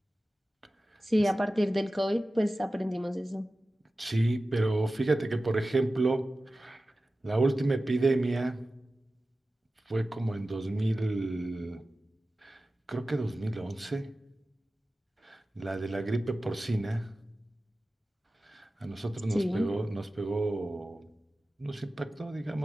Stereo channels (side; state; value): both; normal; correlation 0.95